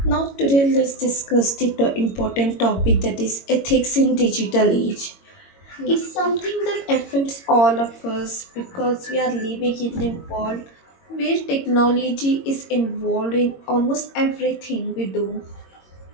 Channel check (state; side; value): late; right; 22 ms